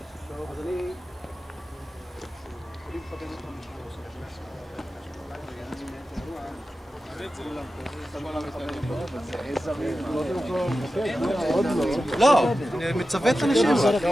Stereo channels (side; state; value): both; normal; correlation 0.93